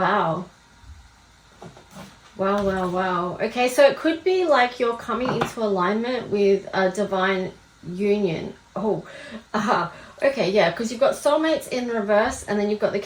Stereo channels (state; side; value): identical; both; correlation 1.00